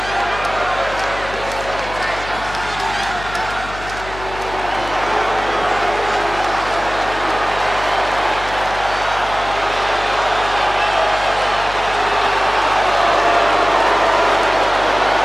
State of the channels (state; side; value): noise; left; hum, 13 dB below the sound